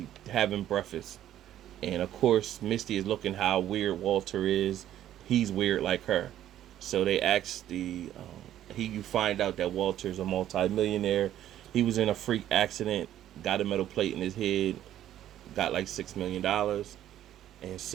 having breakfast, and of course, Misty is looking how weird Walter is. He's weird like her. So they asked you find out that Walter's a multi-millionaire. He was in a freak accident, got a metal plate in his head, got like $6 million, and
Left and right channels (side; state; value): left; quieter; 11.9 dB